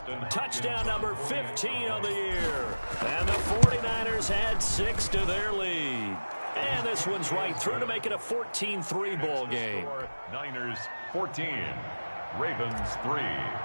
touchdown number 15 of the year. And the 49ers add 6 to their lead. And this one's right through to make it a 14-3 ball game. Niners 14, Ravens 3.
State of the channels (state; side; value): inverted; both; correlation -1.00